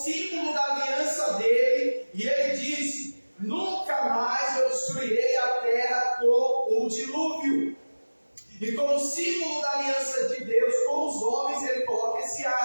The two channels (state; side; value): inverted; both; correlation -1.00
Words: símbolo da aliança dele. E ele disse: nunca mais eu destruirei a terra com o dilúvio. E como símbolo da aliança de Deus com os homens, ele coloca esse